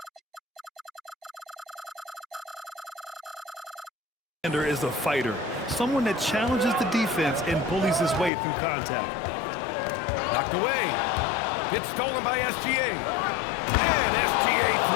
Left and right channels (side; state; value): right; drops out; at 8.3 s